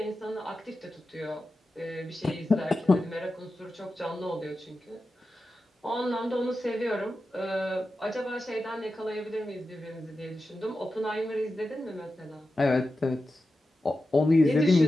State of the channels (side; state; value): both; normal; correlation 0.92